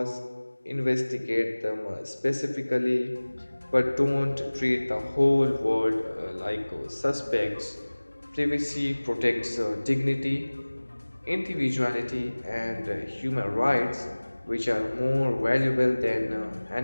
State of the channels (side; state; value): both; inverted; correlation -1.00